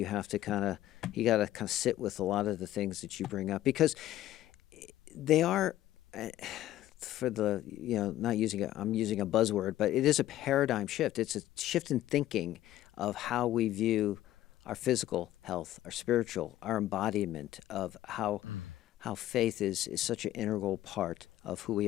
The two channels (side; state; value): right; quieter; 13.9 dB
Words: have to you got to kind of sit with a lot of the things that you bring up, because they are, for the, not using I'm using a buzzword, but it is a paradigm shift. It's a shift in thinking of how we view our physical health, our spiritual, our embodiment of how faith is such an integral part of who